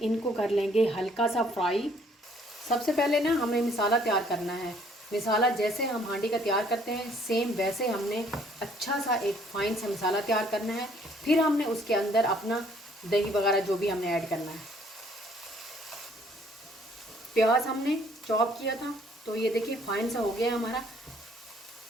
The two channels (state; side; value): normal; both; correlation 0.62